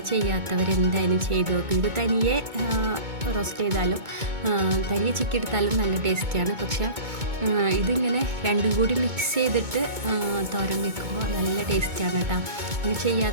ചെയ്യാത്തവരെന്തായാലും ചെയ്ത് നോക്കും. ഇത് തനിയെ റോസ്റ്റ് ചെയ്താലും തനിയെ ചിക്കി എടുത്താലും നല്ല ടേസ്റ്റിയാണ്. പക്ഷേ ഇതിങ്ങനെ രണ്ടും കൂടി മിക്സ് ചെയ്തിട്ട് തോരൻ വെക്കുമ്പോൾ നല്ല ടേസ്റ്റാണ് കേട്ടോ. ഇങ്ങനെ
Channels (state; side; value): late; left; 2.2 ms